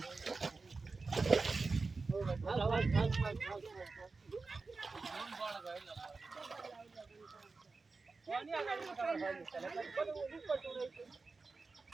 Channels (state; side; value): quieter; left; 4.0 dB